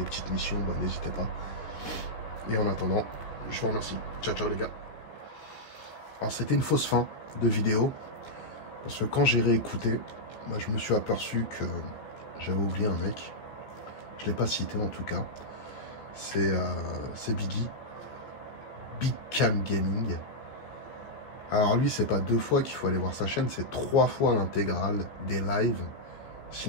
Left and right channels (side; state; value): right; late; 14 ms